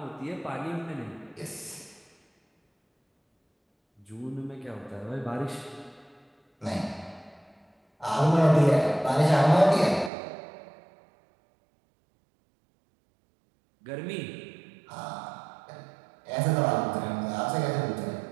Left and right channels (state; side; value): drops out; left; at 10.1 s